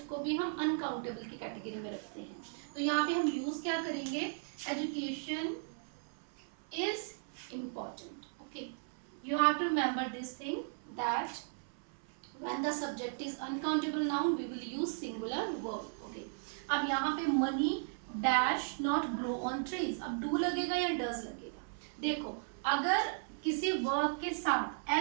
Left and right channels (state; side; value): silent; left; 54 dB below the other